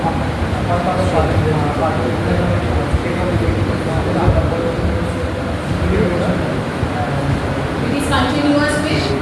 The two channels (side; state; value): both; identical; correlation 1.00